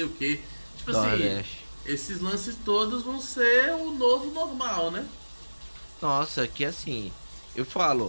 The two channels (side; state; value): both; inverted; correlation -1.00